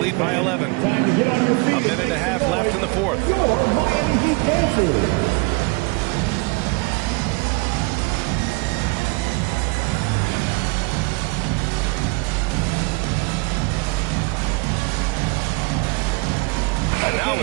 by 11. A minute and a half left in the fourth. Your Miami Heat Panthers.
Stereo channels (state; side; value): quieter; left; 27.8 dB